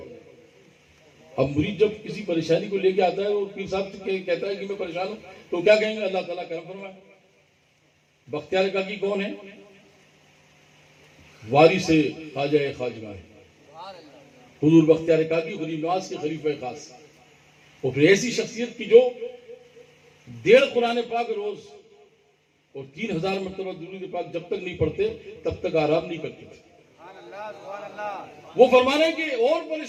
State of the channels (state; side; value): identical; both; correlation 1.00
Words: اب مرید جب کسی پریشانی کو لے کے آتا ہے وہ پیر صاحب سے کہتا ہے کہ میں پریشان ہوں تو کیا کہیں گے؟ اللہ تعالیٰ کرم فرمائے. بختیار کاکی کون ہے؟ وارث خواجہ خواجگاہ حضور بختیار کاکی غریب نواز کے خلیفہ خاص. وہ پھر ایسی شخصیت کی جو 1.5 قرآن پاک روز اور 3000 مرتبہ درود پاک جب تک نہیں پڑھتے تب تک آرام نہیں کرتے تھے. وہ فرمانا ہے کہ اور